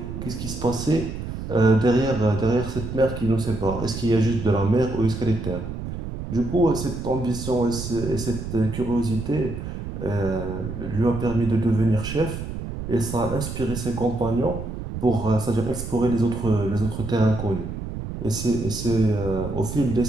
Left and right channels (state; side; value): noise; right; rumble, 7 dB below the sound